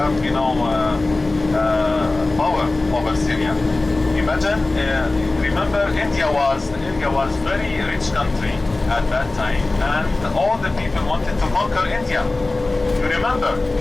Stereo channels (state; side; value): quieter; right; 3.1 dB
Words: power over Syria. Imagine, remember India was very rich country at that time, and all the people wanted to conquer India. You remember?